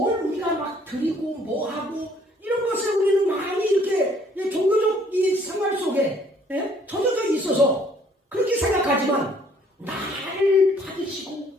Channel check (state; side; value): normal; both; correlation 0.61